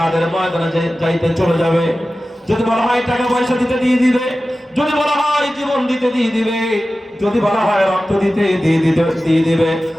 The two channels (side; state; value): both; normal; correlation 0.95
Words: ময়দানে যাইতে চলে যাবে, যদি বলা হয় টাকা পয়সা দিতে দিয়ে দিবে, যদি বলা হয় জীবন দিতে দিয়ে দিবে, যদি বলা হয় রক্ত দিতে দিয়ে দিবে,